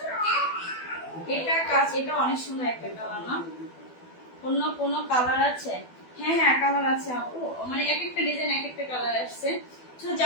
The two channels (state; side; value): late; right; 12 ms